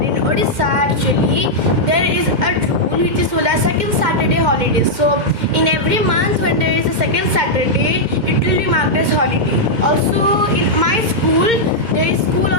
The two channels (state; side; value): late; left; 2.1 ms